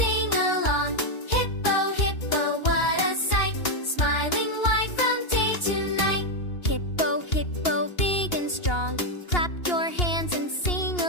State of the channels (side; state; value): right; late; 2.8 ms